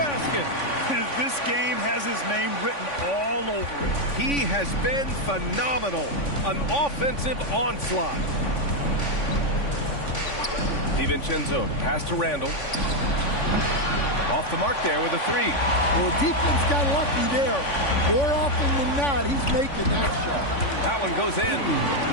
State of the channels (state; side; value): late; right; 3.5 ms